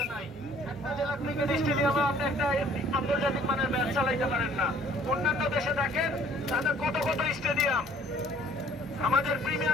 নাই। একটা জেলা ক্রিকেট স্টেডিয়ামে আপনি একটা আন্তর্জাতিক মানের ম্যাচ চালাইতে পারেন না। অন্যান্য দেশে দেখেন তাদের কত কত স্টেডিয়াম। আমাদের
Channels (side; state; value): both; normal; correlation 0.57